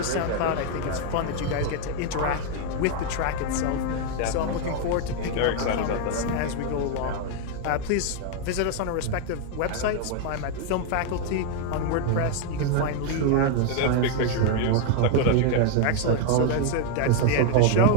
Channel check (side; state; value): both; different; correlation 0.00